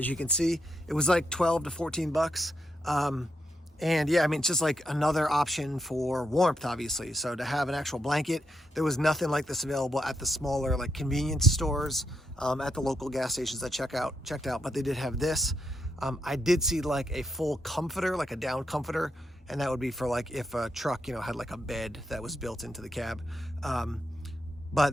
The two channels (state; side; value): normal; both; correlation 0.81